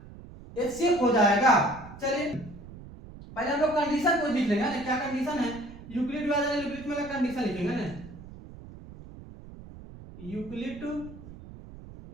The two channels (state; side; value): noise; right; rumble, 16 dB below the sound